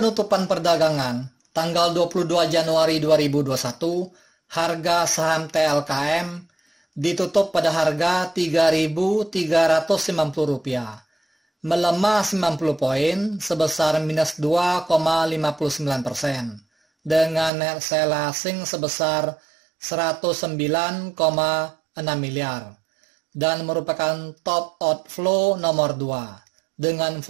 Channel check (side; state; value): left; drops out; at 17.5 s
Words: perdagangan, tanggal 22 Januari 2021, harga saham TLKM ditutup pada harga Rp3.350, melemah 90 poin sebesar minus 2,59%, dengan net sell asing sebesar 109,6 miliar. Dan merupakan top outflow nomor 2 dengan